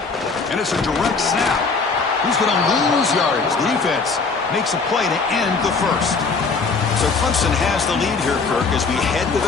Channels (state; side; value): quieter; right; 4.5 dB